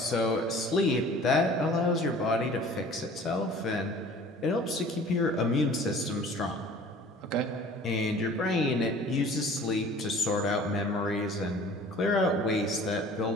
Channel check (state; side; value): normal; both; correlation 0.47